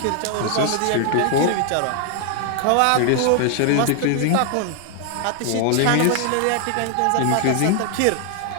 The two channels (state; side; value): different; both; correlation 0.00